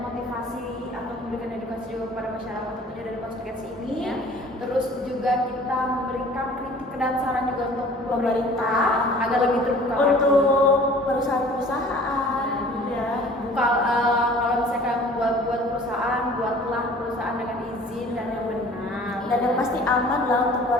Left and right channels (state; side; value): normal; both; correlation 0.48